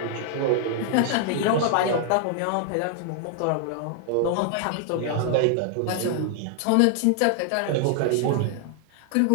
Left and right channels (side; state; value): both; different; correlation 0.00